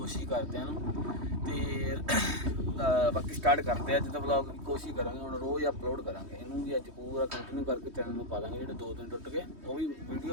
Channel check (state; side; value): late; left; 3.2 ms